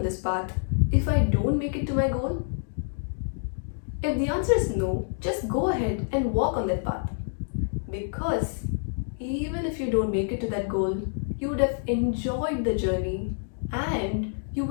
this path if I don't make it to my goal? If the answer is no, just go ahead and walk on that path. Because even if you don't make it to that goal, you would have enjoyed the journey and you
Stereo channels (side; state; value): right; silent; digital silence